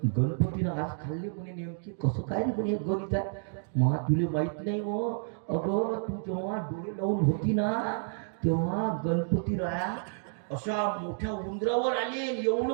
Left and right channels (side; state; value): left; silent; digital silence